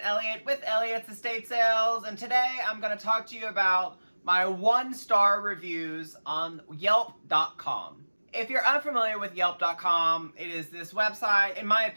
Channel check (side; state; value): both; inverted; correlation -1.00